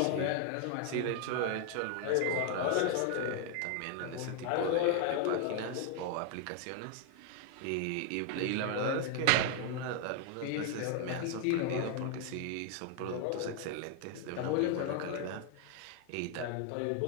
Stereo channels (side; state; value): both; different; correlation 0.00